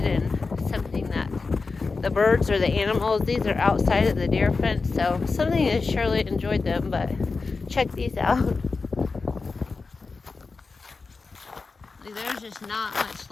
and something that the birds or the animals, these are outside of the deer fence, so something has surely enjoyed them. But check these out. Like, there's just not much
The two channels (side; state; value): right; quieter; 4.2 dB